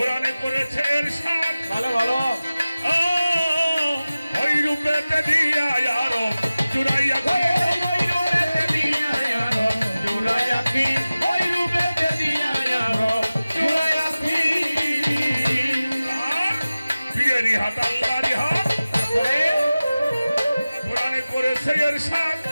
করেছে ইরশাদ ভালো ভালো ওই রূপেতে দিয়া আরো জুড়াইয়া ওই রূপেতে দিয়া আরো জুড়াইয়াছি ওই রূপেতে দিয়া আরো জুড়াইয়াছি পীরেরই হাত আল্লাহরই হাত কোরআনে করেছে ইরশাদ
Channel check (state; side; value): inverted; both; correlation -0.97